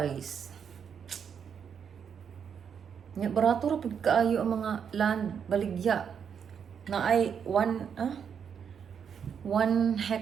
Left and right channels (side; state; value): left; quieter; 7.4 dB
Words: Nya barato ra pud kaayo ang mga land baligya na ay 1